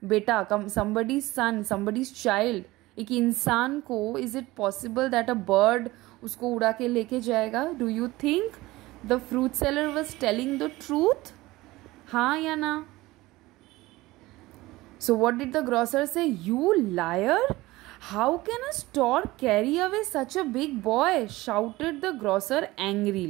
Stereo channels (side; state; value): left; quieter; 19.2 dB